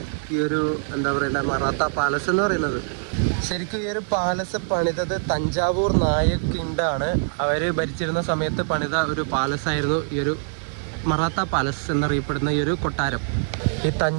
ഈ ഒരു എന്താ പറയുക മറാത്ത പാലസ് എന്ന് പറയുന്നത്. ശരിക്കും ഈ ഒരു പാലസ് പണിതത് തഞ്ചാവൂർ നായക് കിങ്ഡമാണ്. അവർ ഭരിച്ചിരുന്ന സമയത്ത് പണിത ഒരു പാലസായിരുന്നു ഈ ഒരു മറാത്ത പാലസ് എന്നറിയപ്പെടുന്ന ഈ ഒരു കൊട്ടാരം. ഈ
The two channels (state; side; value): silent; left; digital silence